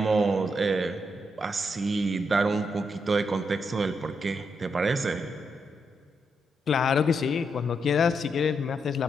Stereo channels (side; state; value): both; normal; correlation 0.81